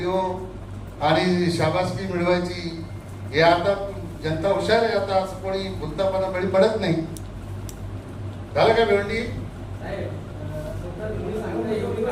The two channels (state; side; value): identical; both; correlation 1.00